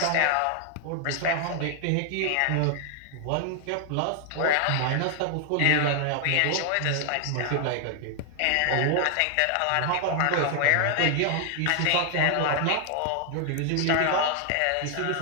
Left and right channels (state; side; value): different; both; correlation 0.00